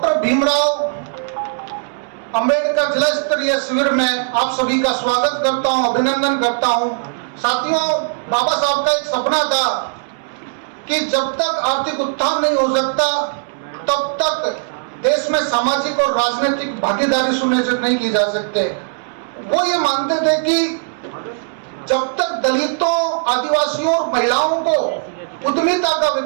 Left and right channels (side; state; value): left; silent; 67 dB below the other